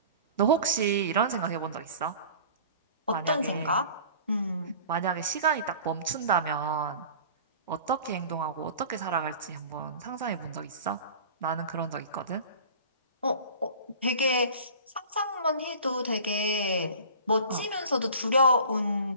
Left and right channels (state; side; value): inverted; both; correlation -0.42